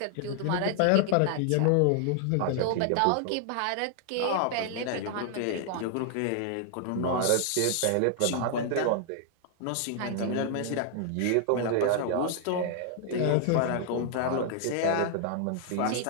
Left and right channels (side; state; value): both; different; correlation 0.00